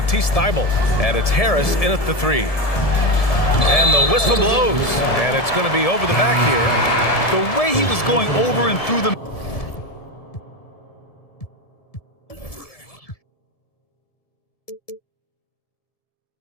Thybulle. And it's Harris in at the 3. And the whistle blows. And it's going to be over the back here. The way he was going over and through the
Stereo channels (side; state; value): right; late; 1.7 ms